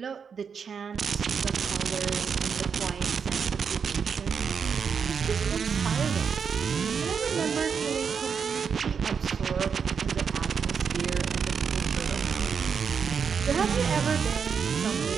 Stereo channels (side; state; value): left; quieter; 6.4 dB